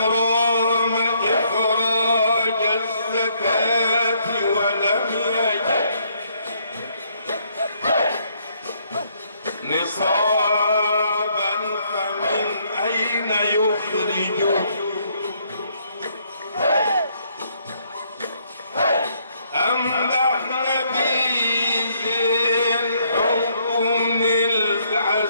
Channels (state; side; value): inverted; both; correlation -0.70